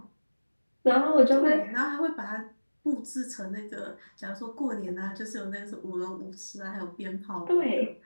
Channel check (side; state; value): both; inverted; correlation -1.00